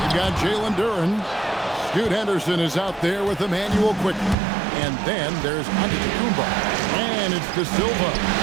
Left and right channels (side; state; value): left; drops out; at 4.4 s